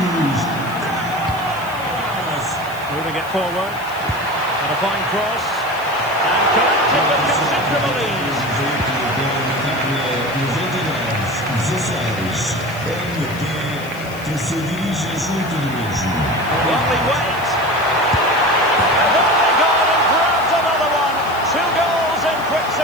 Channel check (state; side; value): noise; left; hiss, 20 dB below the sound